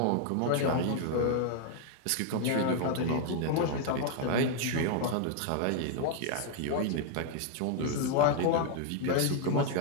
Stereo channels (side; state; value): both; different; correlation 0.00